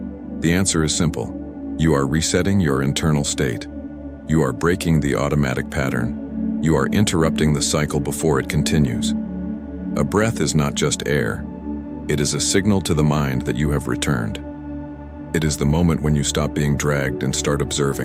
The answer is simple. You are resetting your internal state. You are breaking the automatic pattern. You are interrupting the cycle before it continues. A breath is not just air. It is a signal to the mind that you have returned. It is the moment when you stop being dragged and start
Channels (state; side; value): identical; both; correlation 1.00